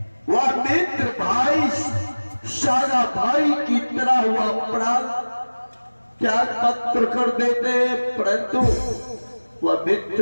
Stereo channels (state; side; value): inverted; both; correlation -1.00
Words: वह मित्र भाई सारा भाई की तरह हुआ प्राण त्याग पत्र कर देते, परंतु वह